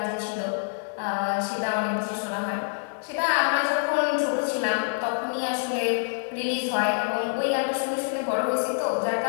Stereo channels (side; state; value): right; silent; digital silence